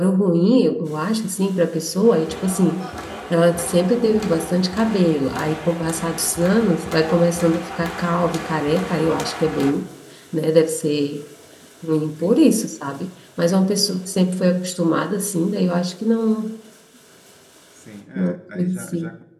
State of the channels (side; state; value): both; identical; correlation 1.00